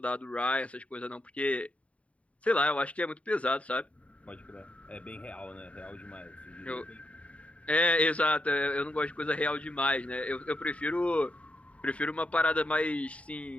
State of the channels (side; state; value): right; late; 0.065 ms